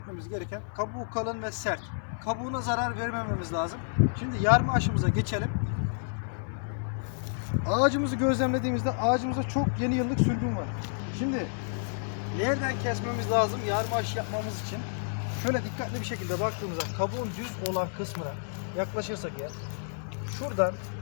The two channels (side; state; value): right; silent; 58 dB below the other